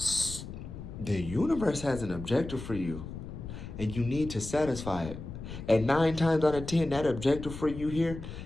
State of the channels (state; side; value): noise; left; rumble, 10 dB below the sound